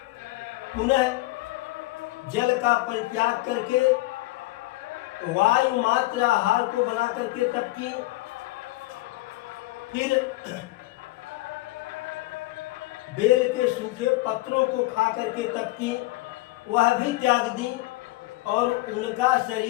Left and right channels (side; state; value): right; quieter; 19.3 dB